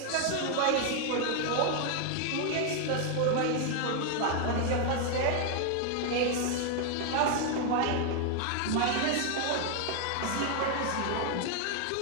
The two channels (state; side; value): different; both; correlation 0.00